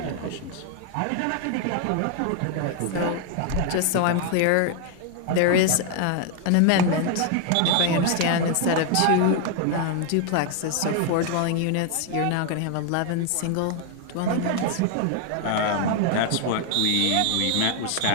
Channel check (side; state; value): both; different; correlation 0.00